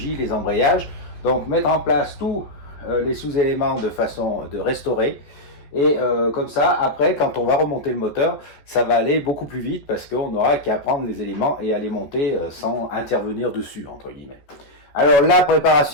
les embrayages. Donc mettre en place tous les sous-éléments de façon de restaurer. Et comme ça, après, quand on va remonter le moteur, ça va aller beaucoup plus vite parce qu'on n'aura qu'à prendre les éléments et à les monter sans intervenir dessus, entre guillemets. Alors la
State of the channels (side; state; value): right; late; 14 ms